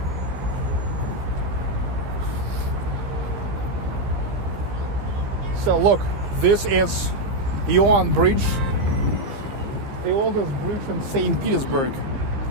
So look, this is Ion Bridge, the oldest bridge in St Petersburg.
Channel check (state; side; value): late; left; 15 ms